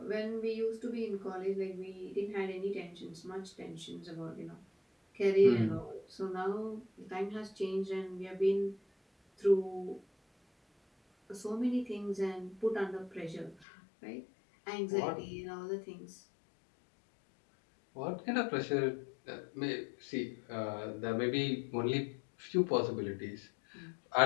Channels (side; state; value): right; drops out; at 13.7 s